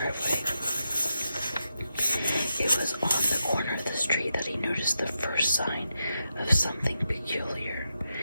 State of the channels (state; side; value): inverted; both; correlation -0.86